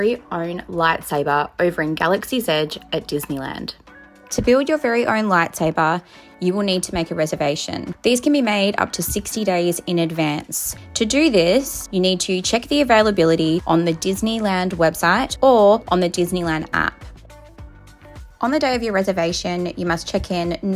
own lightsaber over in Galaxy's Edge at Disneyland. To build your very own lightsaber, you will need to make a reservation. These can be made up to 60 days in advance. To do this, you need to check the availability on the Disneyland website or on the Disneyland app. On the day of your reservation, you must check in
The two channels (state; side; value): identical; both; correlation 1.00